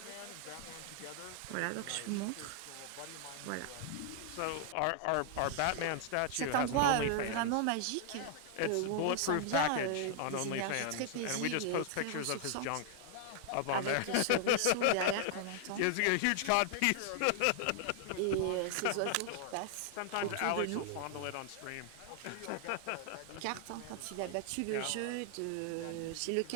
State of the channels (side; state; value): both; different; correlation 0.00